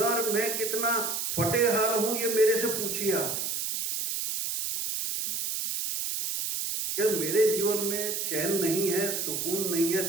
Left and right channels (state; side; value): noise; right; hiss, 2 dB below the sound